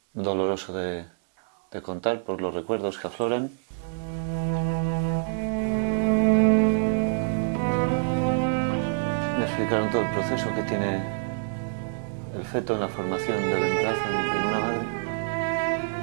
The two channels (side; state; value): left; silent; digital silence